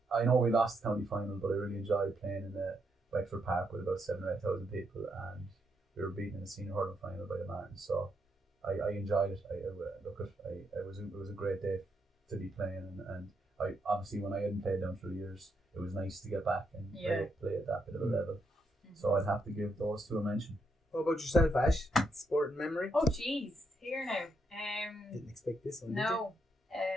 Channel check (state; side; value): normal; both; correlation 0.79